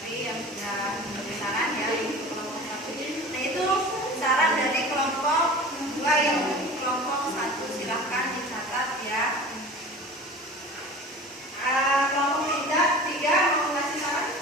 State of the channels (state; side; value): normal; both; correlation 0.38